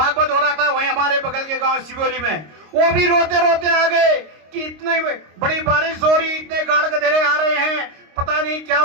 हो रहा था, वहीं हमारे बगल के गांव सिवोली में, वो भी रोते रोते आ गए कि इतनी बड़ी बारिश हो रही, इतने गाड़ गधेरे आ रहे हैं, पता नहीं क्या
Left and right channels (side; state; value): left; late; 26 ms